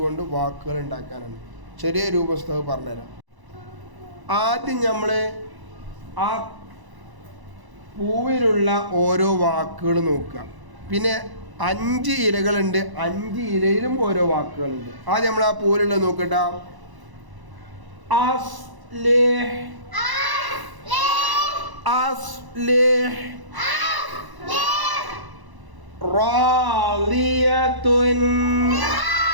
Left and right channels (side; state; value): left; late; 1.0 ms